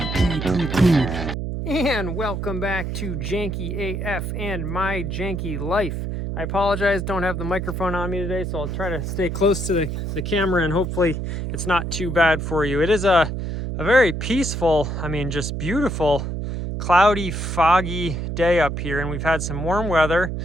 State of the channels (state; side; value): noise; right; hum, 4 dB below the sound